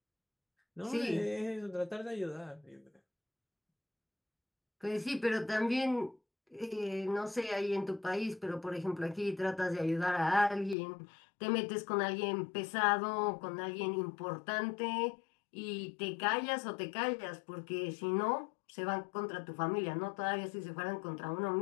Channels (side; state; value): right; drops out; at 10.8 s